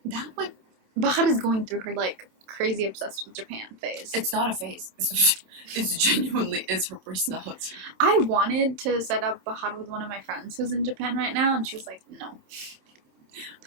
That would. Bahar is going through her, like, crazy obsessed with Japan phase. It's not a phase. It's genuinely is her personality. I wanted to set up Bahar with one of my friends who's in Japan right now, and she was like, no.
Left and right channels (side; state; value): left; late; 27 ms